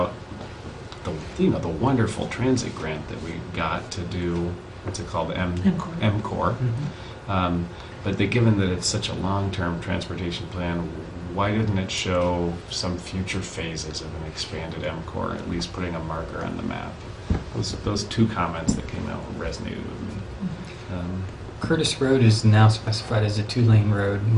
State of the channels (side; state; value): both; identical; correlation 1.00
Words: the wonderful transit grant that we got to do, what's it called, MCOR. But given that it's such a long-term transportation plan, why didn't it show some future phases of an expanded MCOR, at least putting a marker on the map? Those two comments that came out resonated with me. Curtis Road is now specified as a 2-lane road